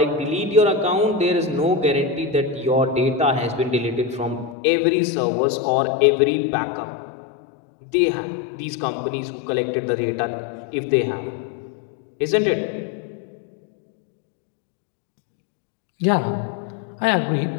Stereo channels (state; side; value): drops out; right; at 4.5 s